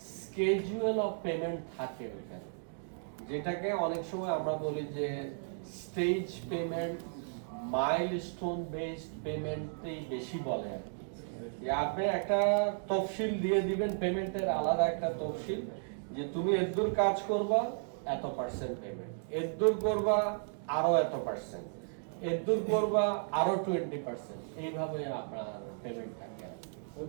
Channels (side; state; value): left; silent; digital silence